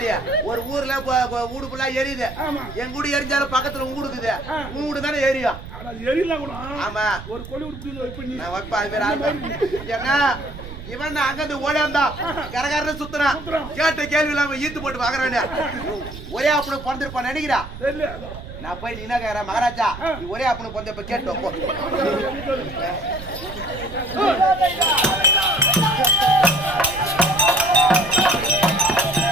ஒரு ஊர்ல வீடு ஃபுல்லா எரியுது என் கூடு எரிஞ்சாலும் பக்கத்துல ஊடுக்குது உன் வீடு தானே எரியும் ஆமா ஒரு வைப்பா அது பேர் ஏன்னா இவன் அங்கிருந்து ஓடியாந்தான் கரகரன்னு சுத்துறான் கேட்ட கேள்வி இல்லாம ஈத்து போட்டு பாக்குறேன் ஒரே அப்பனு பிறந்திருப்பான் நினைக்கிறா நான் போய் நீ என்ன கேக்குற மகாராஜா நீ ஒரே அப்பனு பிறந்த இப்ப கேட்டோம்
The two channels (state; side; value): noise; right; rumble, 12 dB below the sound